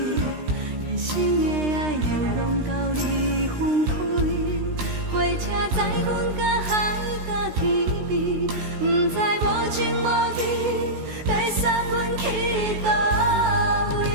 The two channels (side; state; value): left; late; 16 ms